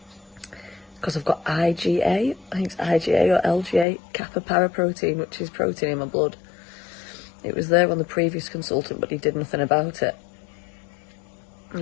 because I've got IgA, I think it's IgA or LGA, kappa paraprotein, which is protein in my blood. It was there on the previous consultant, but he did nothing about it.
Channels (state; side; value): drops out; right; at 3.9 s